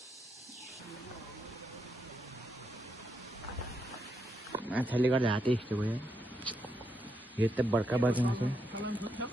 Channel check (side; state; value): both; normal; correlation 0.81